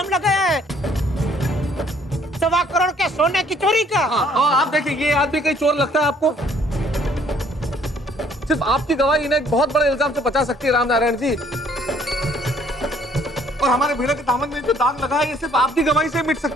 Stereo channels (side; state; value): both; normal; correlation 0.62